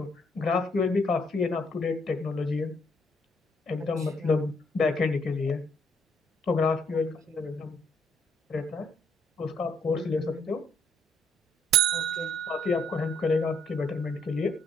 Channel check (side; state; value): both; normal; correlation 0.69